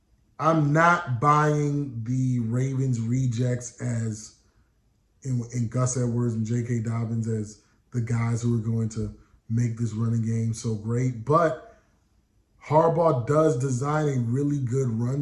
I'm not buying the Ravens rejects as in Gus Edwards and J.K. Dobbins as the guys who are going to make this running game so great. But Harbaugh does design a really good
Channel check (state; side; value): identical; both; correlation 1.00